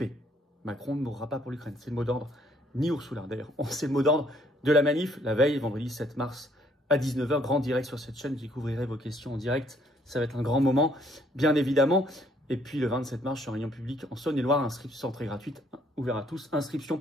Macron ne mourra pas pour l'Ukraine. C'est le mot d'ordre. Ni Ursula, d'ailleurs. C'est le mot d'ordre de la manif, la veille, vendredi 7 mars à 19h. Grand direct sur cette chaîne. Je découvrirai vos questions en direct. Ça va être un grand moment, bien évidemment. Et puis le 27 mars, je suis en réunion publique en Saône-et-Loire. Inscription très gratuite, ouvert à tous. Inscription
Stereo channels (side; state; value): both; normal; correlation 0.65